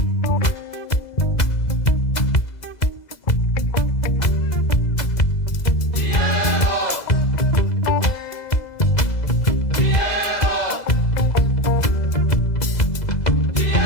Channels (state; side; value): late; right; 2.0 ms